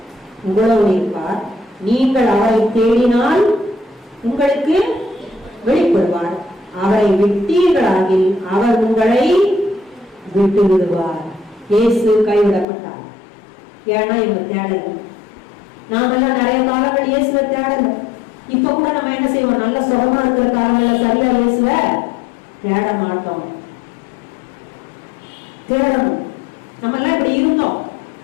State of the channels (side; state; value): right; drops out; at 12.7 s